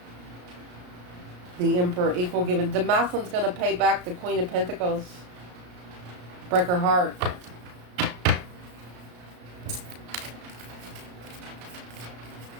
The Emperor, equal given. The masculine's going to pay back the Queen of Pentacles. Break her heart.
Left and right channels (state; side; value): late; left; 33 ms